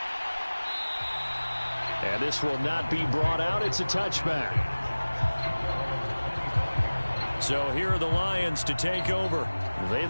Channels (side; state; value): both; inverted; correlation -1.00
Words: And this will not be brought out. It's a touchback. So here are the Lions to take over. They'd